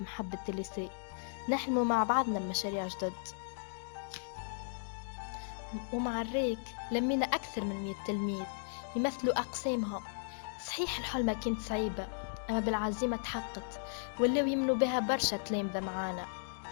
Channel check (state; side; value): silent; right; digital silence